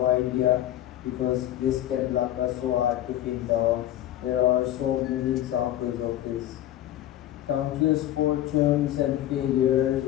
idea, because risk and luck are so hard to pin down. There are so many examples of this. Countless fortunes and failures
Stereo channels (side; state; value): right; quieter; 13.0 dB